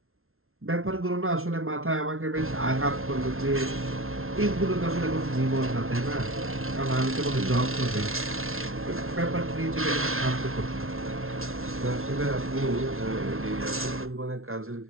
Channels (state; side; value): late; left; 0.62 ms